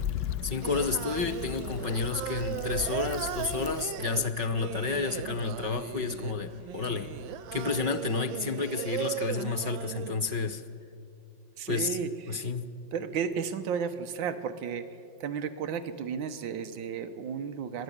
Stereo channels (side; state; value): left; late; 5.4 ms